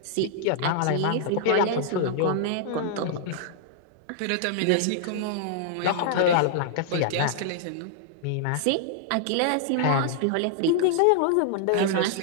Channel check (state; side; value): different; both; correlation -0.01